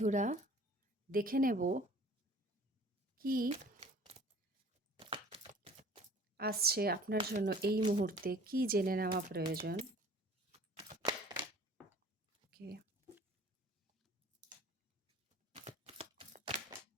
দেখে নেব কি আসছে আপনার জন্য এই মুহূর্তে, কি জেনে নেওয়া প্রয়োজন। ওকে,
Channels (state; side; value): normal; both; correlation 0.49